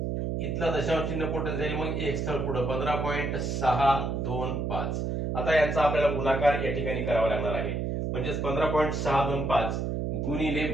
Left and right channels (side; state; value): right; noise; hum, 1 dB below the sound